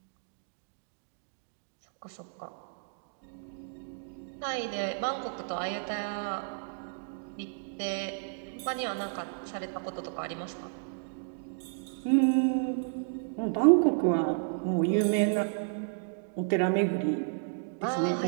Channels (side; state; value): left; silent; digital silence